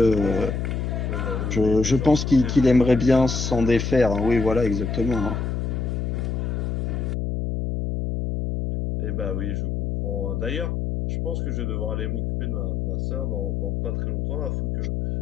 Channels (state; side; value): noise; left; hum, 1 dB below the sound